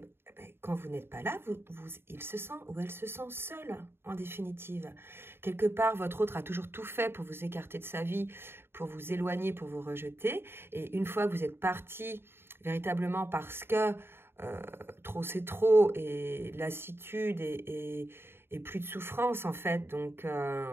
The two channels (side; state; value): left; late; 0.11 ms